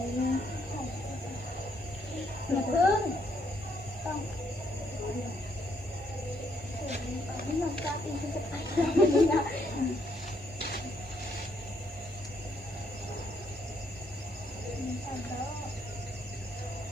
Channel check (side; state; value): both; normal; correlation 0.72